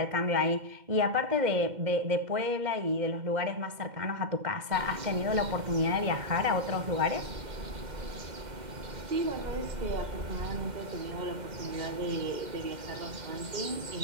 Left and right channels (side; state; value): left; late; 2.1 ms